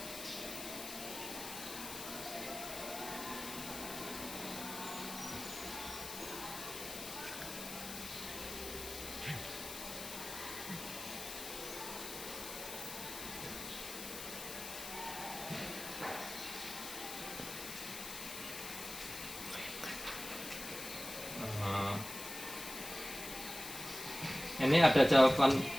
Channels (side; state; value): left; noise; hiss, 8 dB below the sound